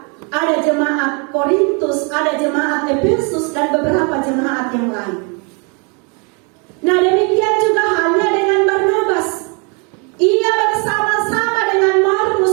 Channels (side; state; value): left; quieter; 34.5 dB